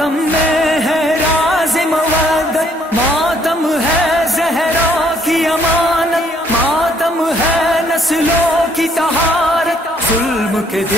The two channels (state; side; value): normal; both; correlation 0.66